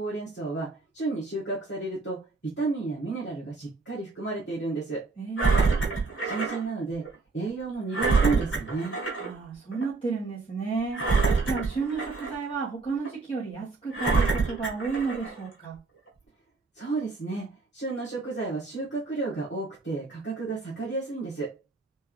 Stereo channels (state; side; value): quieter; left; 3.8 dB